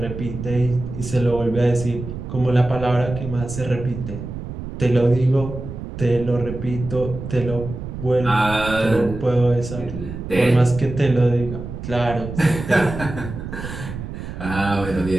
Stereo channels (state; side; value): noise; right; rumble, 9 dB below the sound